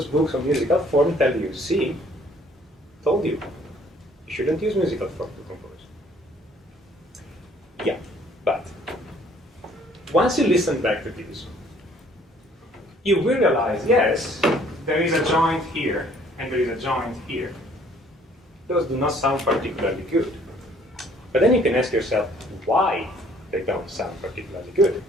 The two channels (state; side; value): normal; both; correlation 0.59